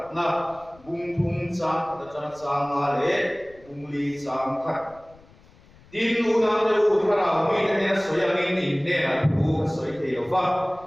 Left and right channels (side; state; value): left; noise; rumble, 26 dB below the sound